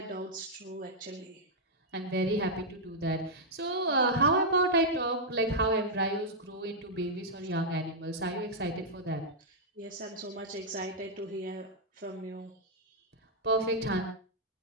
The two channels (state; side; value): normal; both; correlation -0.06